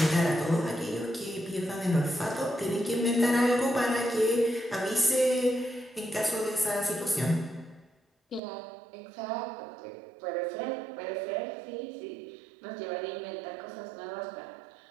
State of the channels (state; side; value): drops out; left; at 8.4 s